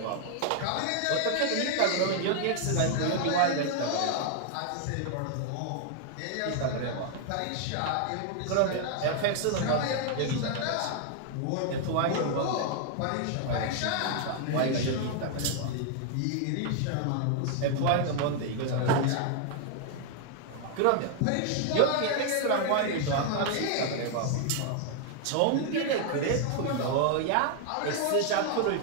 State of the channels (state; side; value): different; both; correlation 0.00